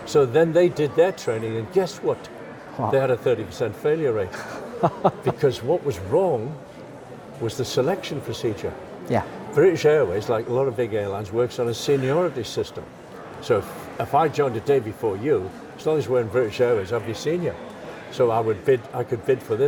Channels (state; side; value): identical; both; correlation 1.00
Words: So then they did their training, and guess what? Wow. They had a 30% failure rate. Because what was wrong was the selection procedure. Yeah. British Airways, like a lot of big airlines, works on a seniority system. So if I joined a day before you, as long as we're in British Airways, I'd be senior. So I could bid for